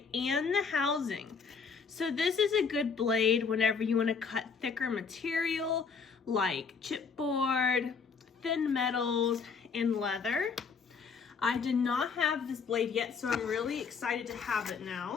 and the housing. So this is a good blade whenever you want to cut thicker material like chipboard, thin metals, and leather. I did not have this blade yet, so I'm really excited to have it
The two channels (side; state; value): right; quieter; 5.5 dB